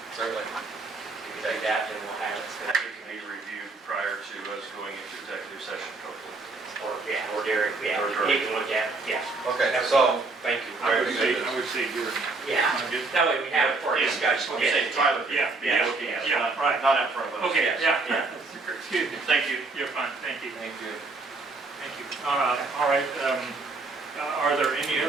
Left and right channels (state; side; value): quieter; left; 3.6 dB